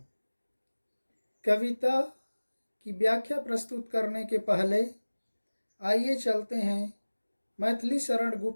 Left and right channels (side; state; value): both; inverted; correlation -1.00